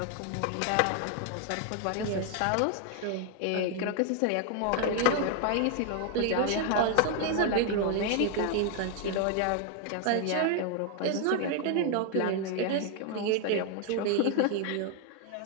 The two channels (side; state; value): both; different; correlation 0.00